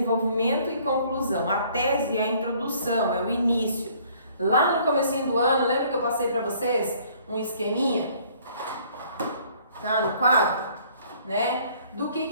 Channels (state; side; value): inverted; both; correlation -0.59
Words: e conclusão. A tese é a introdução, é o início. Lá no comecinho do ano, lembra que eu passei para vocês um esqueminha? Tá no quadro? Né? Do